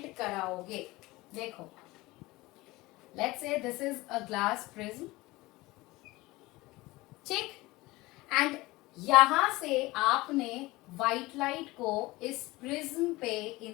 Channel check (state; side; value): quieter; right; 20.5 dB